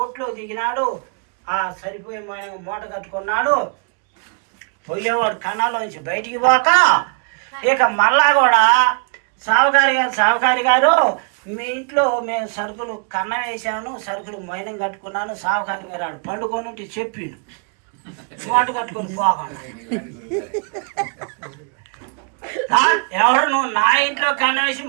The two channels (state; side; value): quieter; left; 38.0 dB